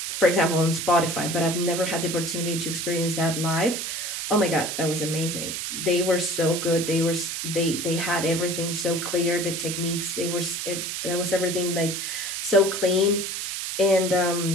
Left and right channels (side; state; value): right; noise; hiss, 4 dB below the sound